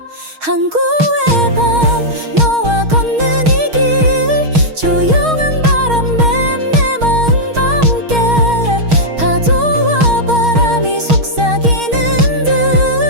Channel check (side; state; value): left; late; 6.4 ms